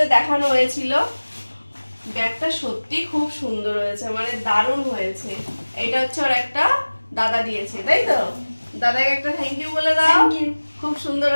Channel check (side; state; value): both; inverted; correlation -1.00